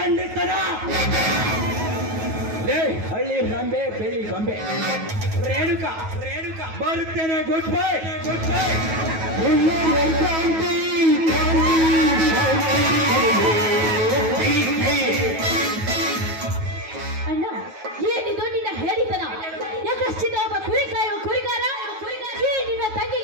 ಲೇ ಹಳ್ಳಿ ಗೊಂಬೆ ಬೆಳಿ ಗೊಂಬೆ ರೇಣುಕ ಬರುತ್ತೇನೆ. Good bye.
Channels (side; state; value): left; late; 9.3 ms